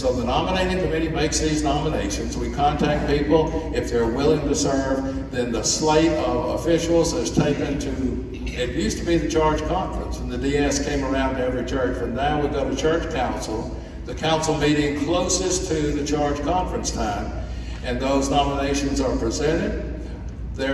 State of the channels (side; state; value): both; identical; correlation 1.00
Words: the Nominating Committee makes these nominations. We contact people. If they're willing to serve, then the slate of officials is taken to, it used to be the charge conference, and the DS came around to every church, but now we go to church council, the council meeting closest to the charge conference time, and those nominations are presented.